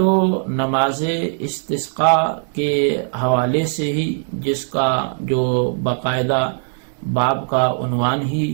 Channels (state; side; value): silent; left; 62 dB below the other